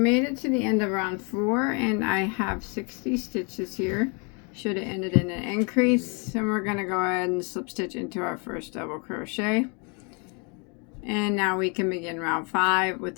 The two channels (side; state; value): right; quieter; 34.2 dB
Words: it to the end of round 4 and I have 60 stitches here. Should have ended in an increase, and we're going to go ahead and slip stitch into our first double crochet. And now we can begin round 5 with